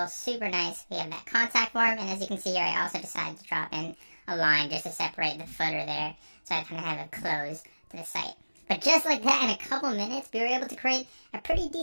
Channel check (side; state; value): both; inverted; correlation -1.00